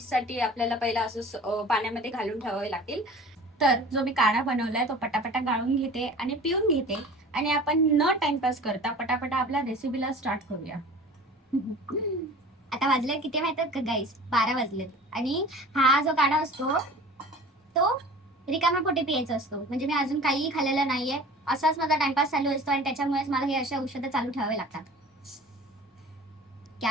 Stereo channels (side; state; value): both; normal; correlation 0.41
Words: आपल्याला पहिला असं पाण्यामध्ये घालून ठेवावे लागतील. तर जो मी काढा बनवलाय तो पटापटा गाळून घेते आणि पिऊन घेते. आणि आपण न टाइमपास करता पटापटा आपल्या रेसिपीला स्टार्ट करूया. आता वाजले किती माहितात का गाईस? 12 वाजलेत. आणि हा जो काढा असतो तो रिकाम्या पोटी प्यायचं असतो. म्हणजे मी अजून काहीही खाल्लेलं नाहीये, असाच माझा टाइमपास चालू असतो आणि त्याच्यामुळेच मला हे अशा औषधं चालू ठेवावे लागतात.